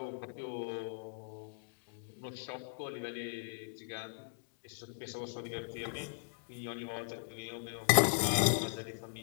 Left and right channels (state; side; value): silent; right; digital silence